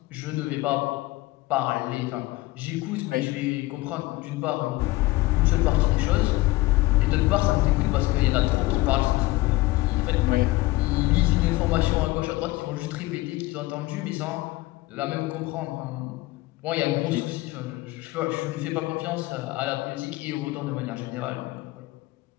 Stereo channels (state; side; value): quieter; right; 19.7 dB